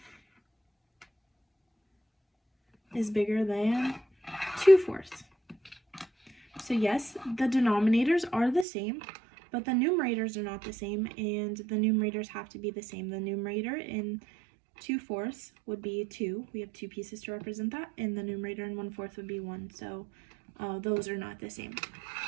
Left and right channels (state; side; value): drops out; left; at 8.7 s